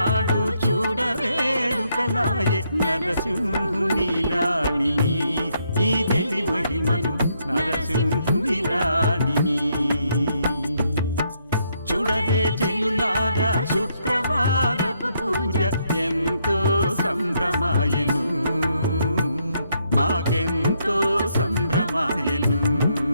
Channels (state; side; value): inverted; both; correlation -0.75